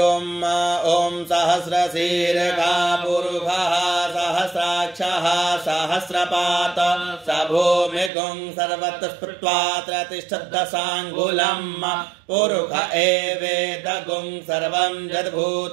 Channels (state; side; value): drops out; left; at 8.1 s